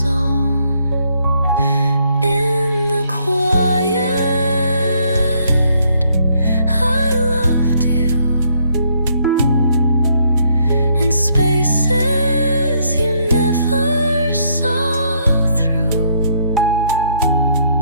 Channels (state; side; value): inverted; both; correlation -0.70